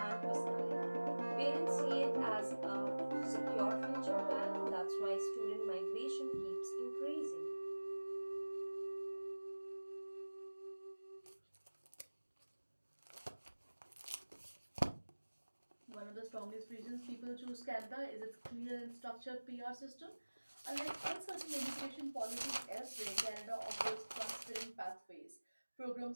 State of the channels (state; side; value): inverted; both; correlation -1.00